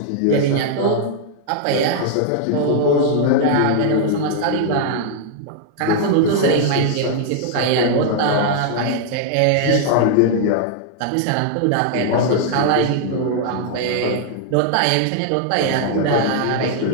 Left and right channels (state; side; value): different; both; correlation -0.01